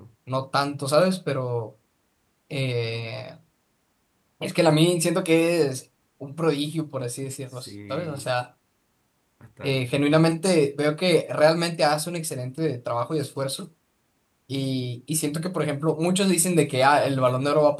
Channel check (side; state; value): both; identical; correlation 1.00